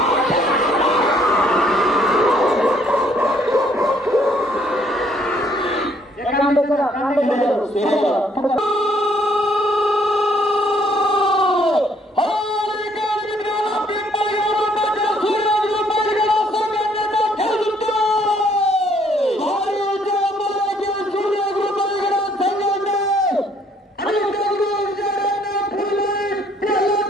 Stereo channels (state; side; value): normal; both; correlation 0.65